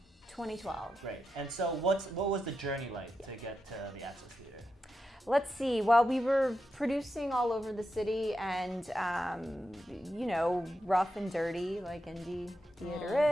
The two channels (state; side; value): normal; both; correlation 0.88